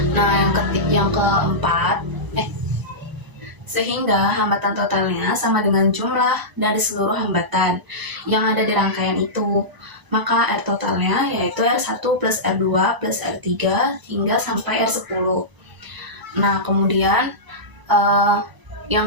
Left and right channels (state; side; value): late; left; 1.0 ms